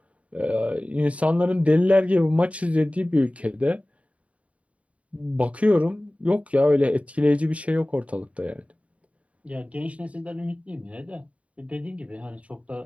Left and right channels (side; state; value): left; late; 0.065 ms